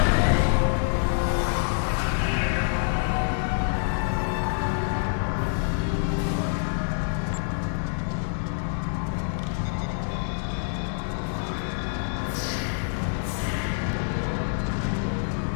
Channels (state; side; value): silent; right; digital silence